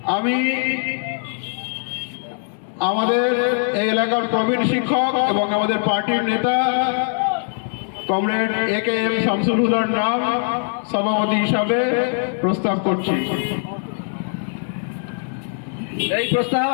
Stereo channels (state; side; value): silent; right; digital silence